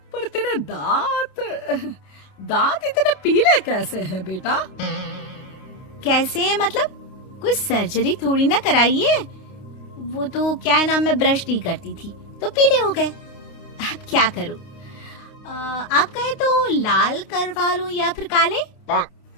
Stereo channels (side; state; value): right; late; 29 ms